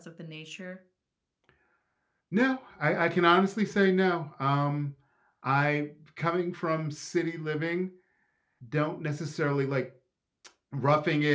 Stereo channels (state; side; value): identical; both; correlation 1.00